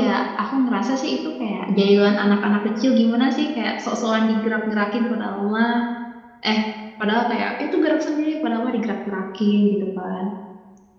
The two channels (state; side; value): identical; both; correlation 1.00